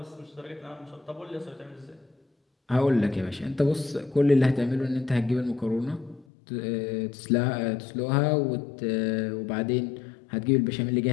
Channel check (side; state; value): right; drops out; at 6.2 s